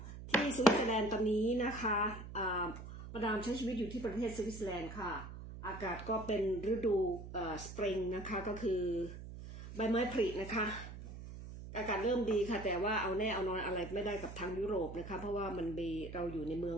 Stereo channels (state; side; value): noise; right; hum, 11 dB below the sound